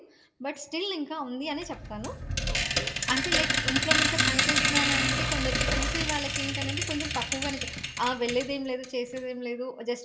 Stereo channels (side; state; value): both; identical; correlation 1.00